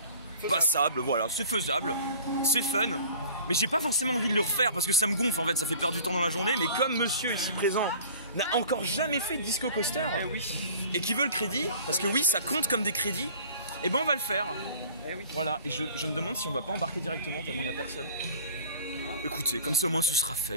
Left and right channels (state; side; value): inverted; both; correlation -0.46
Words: passable, voilà, c'est faisable, c'est fun. Mais j'ai pas forcément envie de le refaire parce que ça me gonfle en fait, ça fait perdre du temps dans la journée. Mais comme monsieur ici présent n'a encore jamais fait de disco coaster et qui veut le crédit, parce que oui ça compte comme des crédits, et ben on va le faire. Oui. Voilà, et je me demande si on va pas embarquer directement tellement il n'y a personne. Écoutez, comme ça au moins ce sera